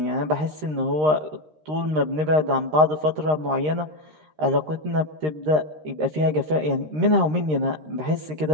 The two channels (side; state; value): left; late; 13 ms